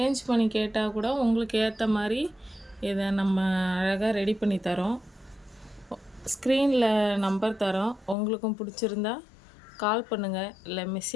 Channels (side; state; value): right; drops out; at 8.2 s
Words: பண்ணி கேட்டால் கூட உங்களுக்கு ஏற்ற மாதிரி இதை நம்ம அழகாக ரெடி பண்ணி தரோம். ஸ்க்ரீனில் நம்பர் தரோம். உங்களுக்கும் பிடிச்சிருந்தா கால் பண்ணுங்கள், இல்லை